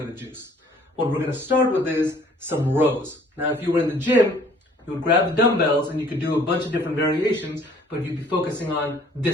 of juice. What we're going to start with is some rows. Now, if you were in the gym, you would grab the dumbbells and you could do a bunch of different variations, but you'd be focusing on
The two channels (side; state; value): both; normal; correlation 0.57